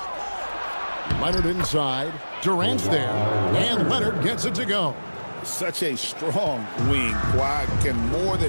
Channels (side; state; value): both; inverted; correlation -1.00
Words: Leonard inside. Durant's there. And Leonard gets it to go. Such a strong wing. Kawhi can more